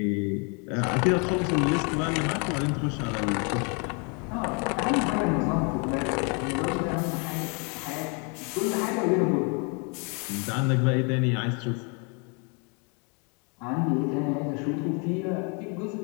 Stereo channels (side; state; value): right; quieter; 35.0 dB